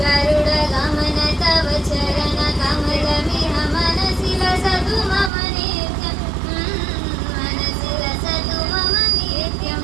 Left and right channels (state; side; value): drops out; left; at 5.3 s